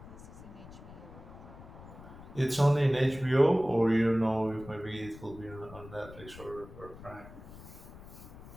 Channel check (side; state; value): left; noise; rumble, 16 dB below the sound